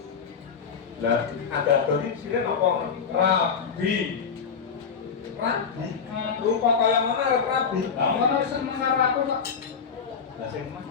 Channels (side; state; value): right; quieter; 6.3 dB